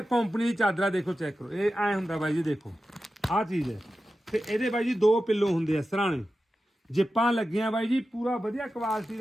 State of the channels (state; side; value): normal; both; correlation 0.93